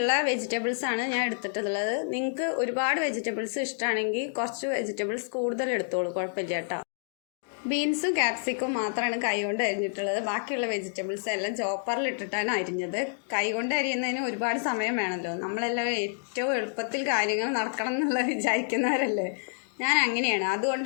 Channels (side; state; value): right; silent; digital silence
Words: വെജിറ്റബിൾസ് ആണ് ഞാൻ എടുത്തിട്ടുള്ളത്. നിങ്ങൾക്ക് ഒരുപാട് വെജിറ്റബിൾസ് ഇഷ്ടമാണെങ്കിൽ കുറച്ച് വെജിറ്റബിൾസ് കൂടുതൽ എടുത്തോളൂ, കുഴപ്പമില്ല കേട്ടോ. ബീൻസും ക്യാപ്സിക്കും മാത്രമാണ് കൈകൊണ്ട് അരിഞ്ഞിട്ടുള്ളത്. ബാക്കിയുള്ള വെജിറ്റബിൾസ് എല്ലാം ചോപ്പറിൽ ഇട്ടിട്ടാണ് അരിഞ്ഞത്. കൈകൊണ്ട് അരിയുന്നതിന് ഒരുപാട് സമയം വേണമല്ലോ. നമ്മളെല്ലാം ഏറ്റവും എളുപ്പത്തിൽ കാര്യങ്ങൾ നടക്കണം എന്നുള്ളത് വിചാരിക്കുന്നവരല്ലേ. ഞാൻ അങ്ങനെയാണ്,